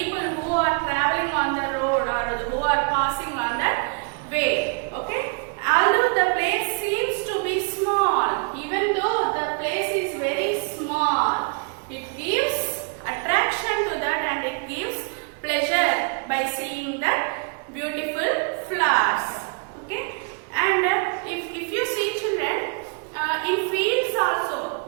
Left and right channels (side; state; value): left; quieter; 39.2 dB